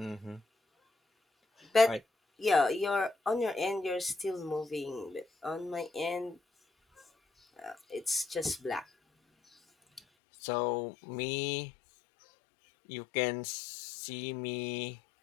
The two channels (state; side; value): drops out; right; at 10.0 s